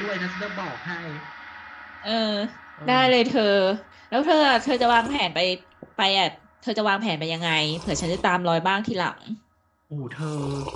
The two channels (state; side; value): identical; both; correlation 1.00